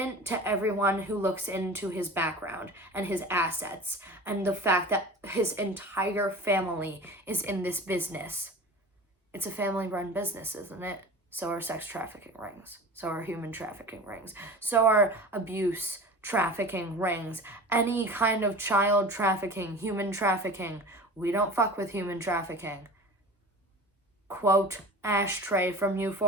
to everyone who looks into his background and his assets and the fact that his entire family is in this business. It's a family-run business, isn't it? So are sex trafficking rings. So are human trafficking rings. So are abuse trafficking rings. Any kind of child trafficking, human trafficking. We don't fuck with human trafficking. Quote Ashtray from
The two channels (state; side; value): normal; both; correlation 0.36